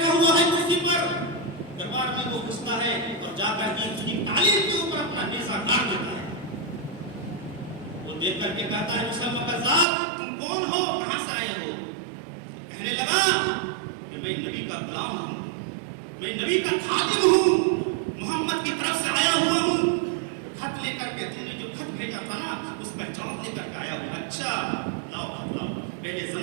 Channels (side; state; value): left; drops out; at 9.9 s